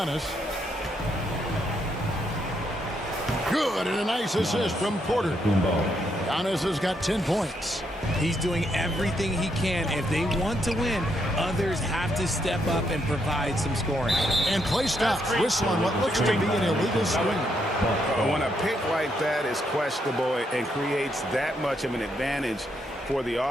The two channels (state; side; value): normal; both; correlation 0.77